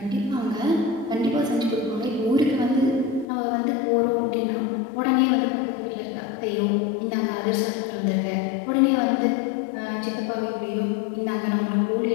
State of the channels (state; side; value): drops out; right; at 3.2 s